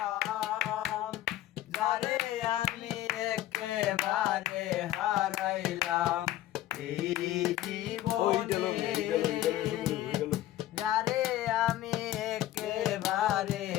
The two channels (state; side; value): quieter; right; 13.9 dB